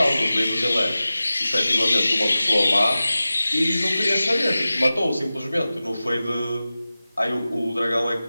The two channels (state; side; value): inverted; both; correlation -0.96